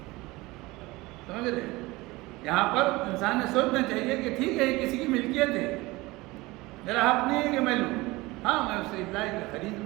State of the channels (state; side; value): quieter; left; 21.3 dB